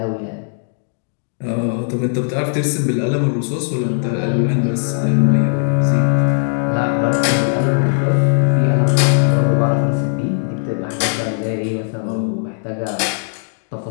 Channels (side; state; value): right; silent; digital silence